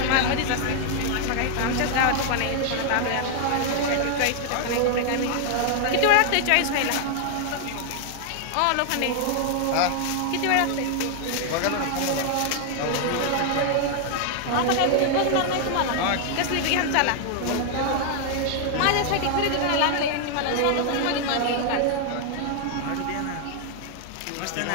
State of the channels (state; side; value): different; both; correlation 0.00